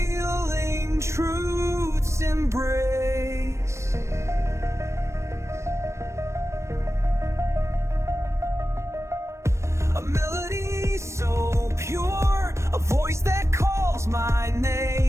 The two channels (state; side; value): late; left; 0.13 ms